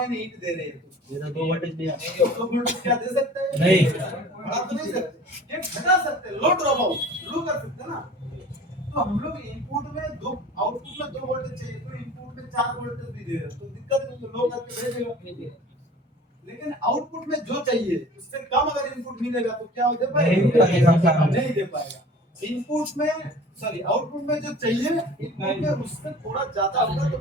दे रहे हैं तो ये 2 वोल्टेज दिया, 2 वोल्टेज क्या दे सकते हैं? नहीं बढ़ा तो नहीं सकते, ये घटा सकते हैं, लो ड्रॉप आउट लो कर सकते हैं ना। तो हम लोग इनपुट में 2 आउटपुट में 2 वोल्टेज चाहिए, तो इनपुट में 4 वोल्टेज भी दे रहे हैं तो दिक्कत नहीं है, लो करके भेजेगा। लेकिन आउटपुट में जो चाहिए उससे कम अगर इनपुट मिलेगा तो क्या दे पाएगा? नहीं दे पाएगा। इनपुट में सॉरी आउटपुट में जो चाहिए इनपुट में उससे थोड़ा ज्यादा होगा तो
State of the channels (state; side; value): normal; both; correlation 0.44